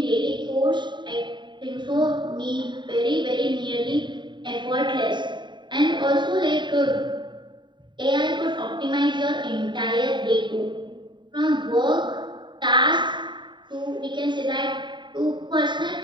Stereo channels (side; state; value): left; late; 0.23 ms